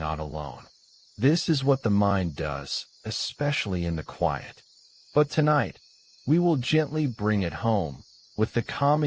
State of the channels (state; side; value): identical; both; correlation 1.00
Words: alone. This is what the mind does, especially in the quiet. But tonight, we will gently bring it home with the